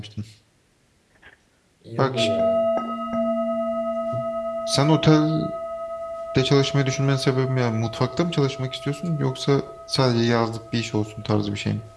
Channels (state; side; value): identical; both; correlation 1.00